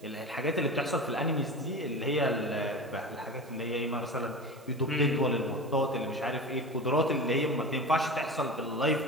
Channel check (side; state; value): right; noise; hiss, 27 dB below the sound